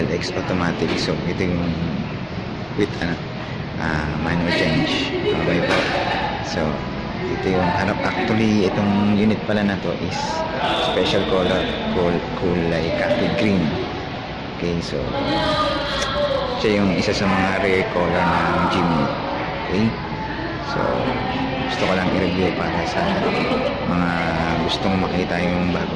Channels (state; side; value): identical; both; correlation 1.00